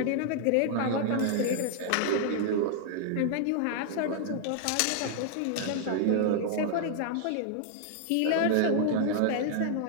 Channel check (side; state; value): both; different; correlation -0.01